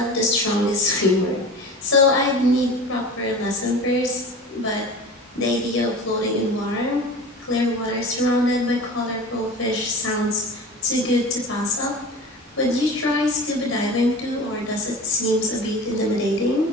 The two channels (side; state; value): both; normal; correlation 0.35